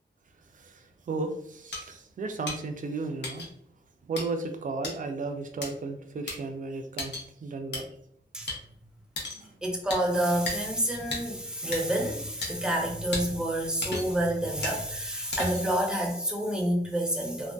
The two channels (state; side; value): normal; both; correlation 0.51